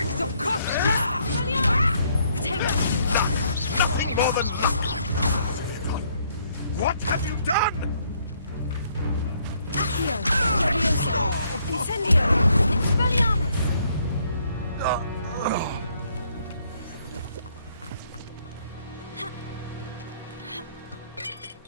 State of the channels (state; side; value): inverted; both; correlation -0.68